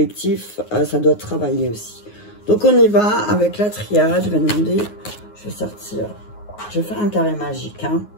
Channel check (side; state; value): right; late; 9.5 ms